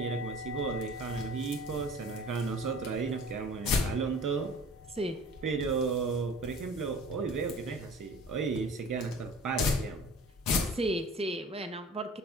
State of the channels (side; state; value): both; normal; correlation 0.44